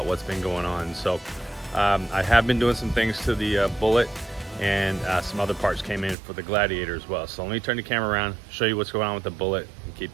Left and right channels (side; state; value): left; drops out; at 6.2 s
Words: what's been going on. So I have been doing some things to the Bullitt, and some other parts came in for the Gladiator as well. So let me turn the camera around, show you what's going on with the Bullitt, and